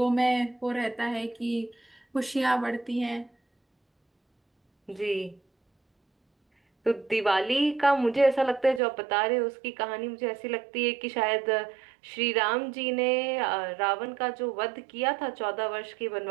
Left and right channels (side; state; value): left; drops out; at 8.8 s